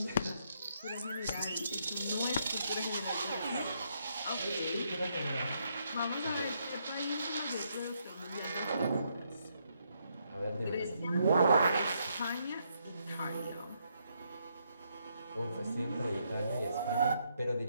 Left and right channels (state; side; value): inverted; both; correlation -0.76